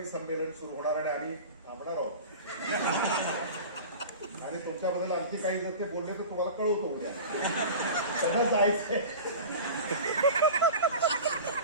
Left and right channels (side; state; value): both; inverted; correlation -0.34